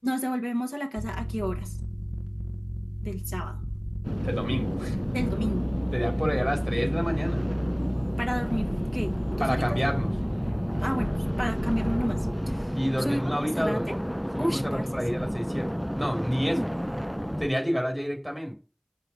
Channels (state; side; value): identical; both; correlation 1.00